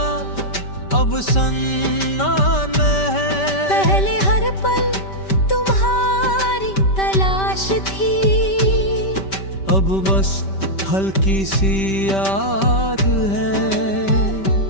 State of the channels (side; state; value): right; late; 5.2 ms